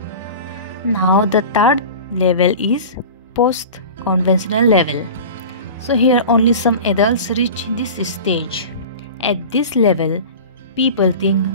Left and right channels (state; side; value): inverted; both; correlation -0.34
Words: Now the third level is post conventional level. So here only some adults reach this stage. At this level, people think